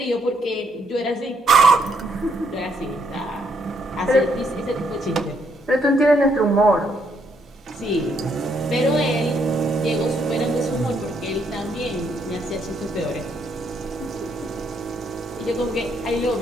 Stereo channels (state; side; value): normal; both; correlation 0.73